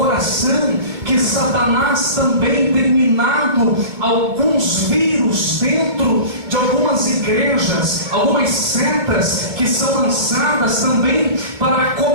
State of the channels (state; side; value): late; left; 2.3 ms